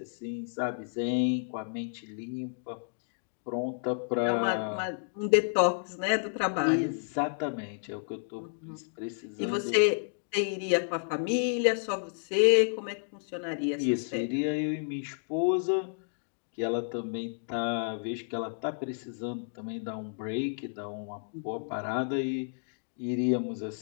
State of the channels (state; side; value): silent; right; digital silence